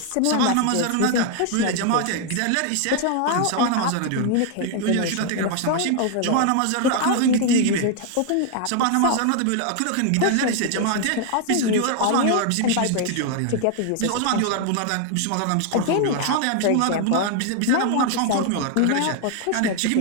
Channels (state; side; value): different; both; correlation 0.00